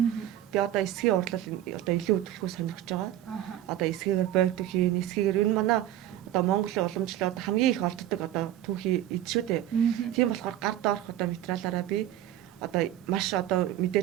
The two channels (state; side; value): quieter; left; 12.6 dB